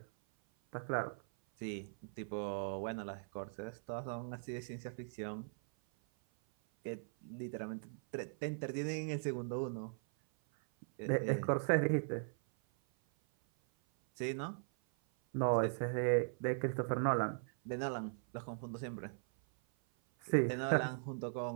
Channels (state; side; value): silent; left; 51 dB below the other